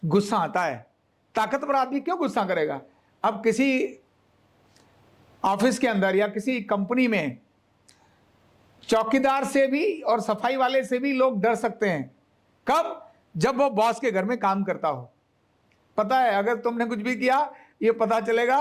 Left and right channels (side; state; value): both; identical; correlation 1.00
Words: गुस्सा आता है। ताकतवर आदमी क्यों गुस्सा करेगा? अब किसी ऑफिस के अंदर या किसी कंपनी में चौकीदार से भी और सफाई वाले से भी लोग डर सकते हैं। कब? जब वो बॉस के घर में काम करता हो। पता है, अगर तुमने कुछ भी किया ये पता